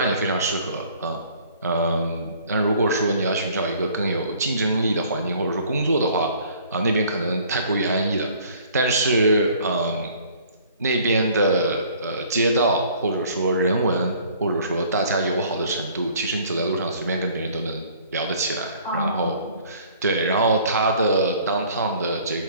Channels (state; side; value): inverted; both; correlation -0.55